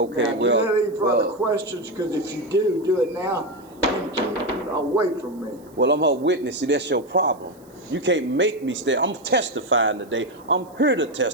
Now, do you have any further questions? Because if you do it now and keep away from me. Well, I'm her witness. See, that's your problem. You can't make me stay. I'm testifying today. I'm here to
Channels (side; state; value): right; noise; hiss, 29 dB below the sound